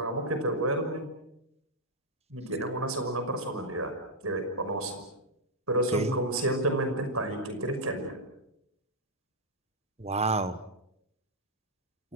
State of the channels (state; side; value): normal; both; correlation -0.07